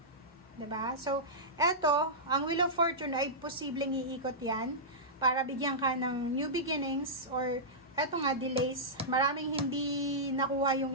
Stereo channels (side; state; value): both; normal; correlation -0.14